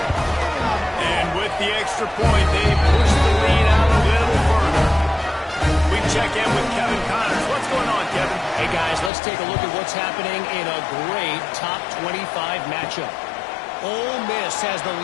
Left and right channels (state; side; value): drops out; right; at 9.1 s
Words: And with the extra point, they push the lead out a little further. We check in with Kevin Connors. What's going on, Kevin? Hey, guys, let's take a look at what's happening in a great top 25 matchup. Ole Miss has the